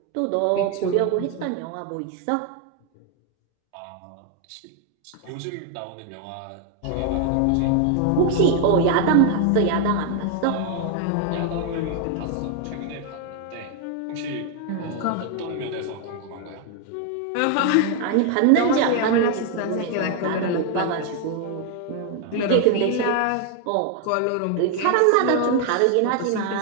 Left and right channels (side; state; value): both; different; correlation 0.01